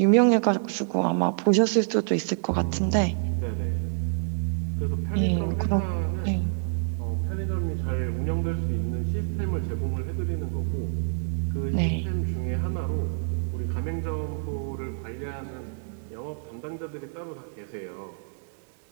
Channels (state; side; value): silent; left; digital silence